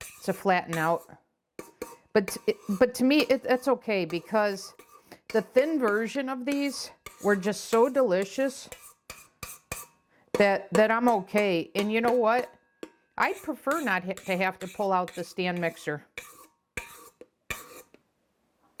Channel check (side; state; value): both; identical; correlation 1.00